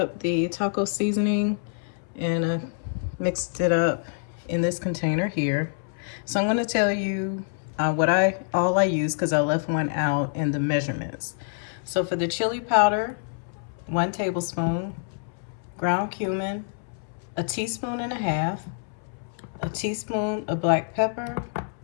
the taco seasoning and I mixed it up in this container here. So I'm going to tell you all I use, because I left one out, in the measurements. So for the chili powder, 1 tablespoon, ground cumin, 1.5 teaspoons, a teaspoon of black pepper.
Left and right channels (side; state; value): right; silent; 61 dB below the other